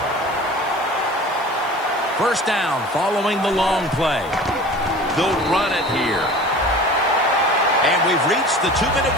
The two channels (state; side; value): noise; left; hiss, 25 dB below the sound